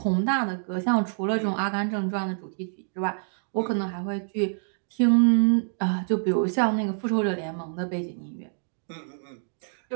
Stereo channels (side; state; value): left; silent; digital silence